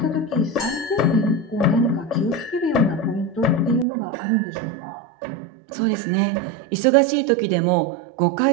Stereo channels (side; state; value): left; drops out; at 3.9 s